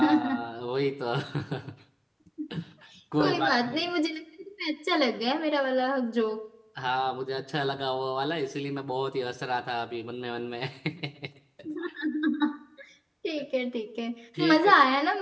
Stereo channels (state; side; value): identical; both; correlation 1.00